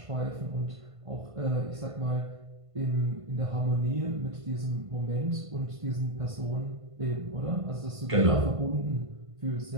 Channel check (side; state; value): left; late; 1.5 ms